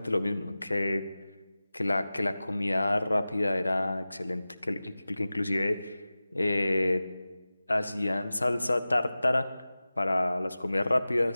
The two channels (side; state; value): both; inverted; correlation -0.97